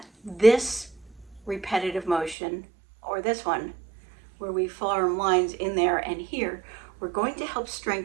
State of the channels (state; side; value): drops out; left; at 2.4 s